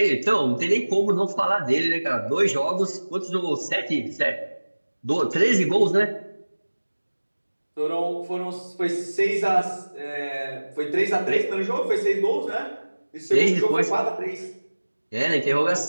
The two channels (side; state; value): both; inverted; correlation -1.00